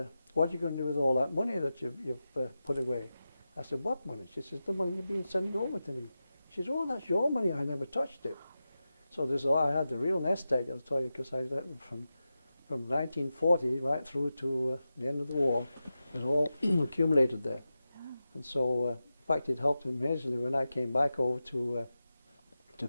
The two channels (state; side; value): inverted; both; correlation -0.92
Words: "What are you going to do with all that money that you've put away?" I said, "What money?" She says, "The money you've been sending over to me." She says, "Oh, that's your money. I never touched it." So I had the real nest egg, I'll tell you, because I from 1940 right through to the end of the war, it was all accumulated there. And so, in fact, it helped immensely when I came back over to